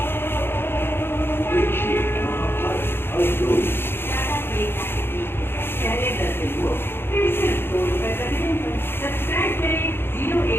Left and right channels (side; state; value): right; late; 0.11 ms